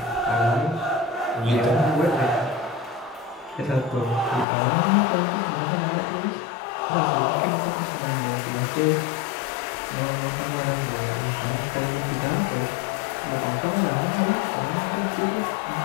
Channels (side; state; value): right; drops out; at 4.5 s